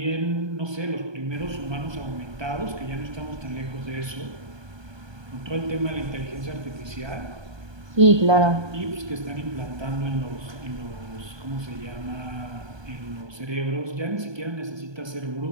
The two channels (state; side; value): late; left; 1.2 ms